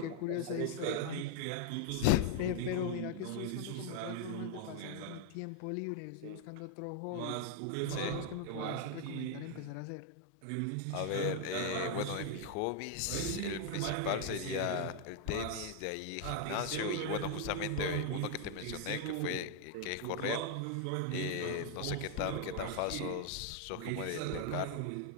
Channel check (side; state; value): both; different; correlation 0.00